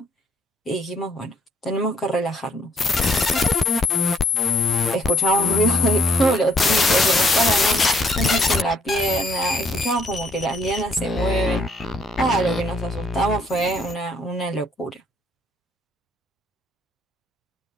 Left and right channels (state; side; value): normal; both; correlation 0.66